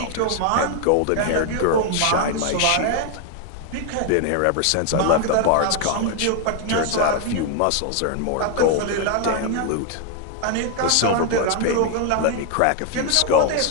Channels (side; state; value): both; different; correlation 0.00